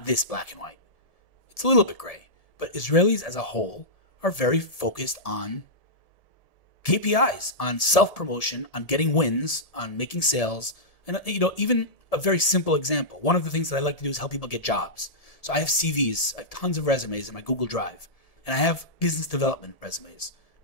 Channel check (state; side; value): late; right; 1.7 ms